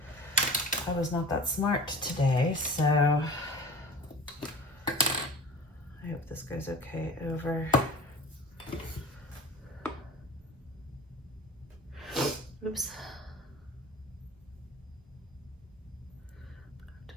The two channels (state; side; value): normal; both; correlation 0.38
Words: I was not that smart today, so I hope this goes okay over. Oops. To